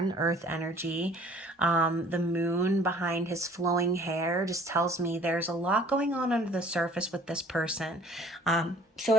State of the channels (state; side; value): normal; both; correlation 0.54